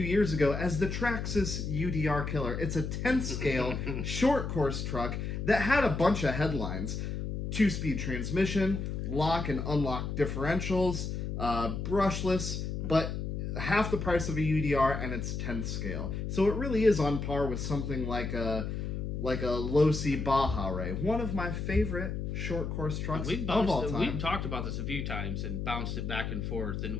years ago as the Traxxas UDR Killer. It's a 10th scale short course truck that had a bunch of headlines. 2-speed transmission, lock and unlock differentials, brushless, but half the price of a UDR, and it's 10th scale. So it really is on par with something like a low-C Baja Ray, one of my favorite short course trucks of all time. We've talked about this a few times and bounced it back and forth, and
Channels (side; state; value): left; noise; hum, 3 dB below the sound